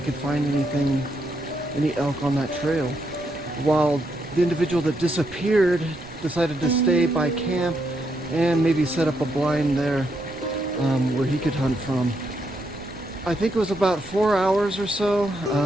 could find any elk on that trail, while the individual that disappeared decided to stay by camp and maybe set up a blind there where he could hunt from. I think it was about 4 hours or so,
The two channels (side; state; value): right; noise; rumble, 20 dB below the sound